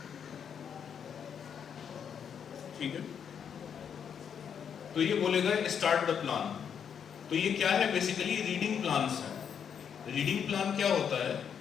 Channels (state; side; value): quieter; right; 7.7 dB